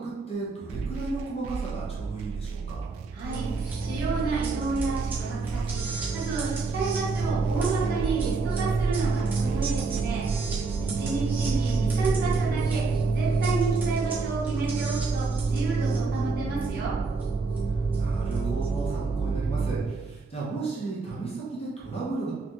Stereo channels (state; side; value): quieter; left; 3.9 dB